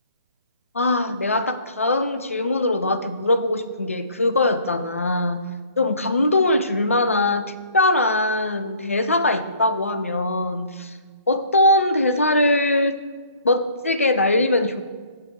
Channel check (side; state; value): both; inverted; correlation -0.55